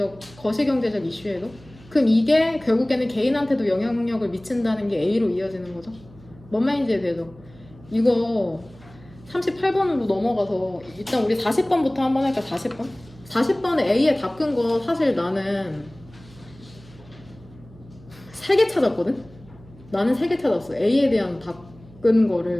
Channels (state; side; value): noise; right; hum, 22 dB below the sound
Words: 이슈에도. 그럼 이게 결국에는 개인한테도 영향력을 미친다는 게 A로 이어지는 거죠. 뭔 말인지 되죠? 이거 38번으로 넘어가서 일단 우리 40번부터 한번 할까? 40번? 40번에 A에 답 끈 거 사실 나는 3개 찾았거든? 나는 3개 찾았어. A에 대한 답 끈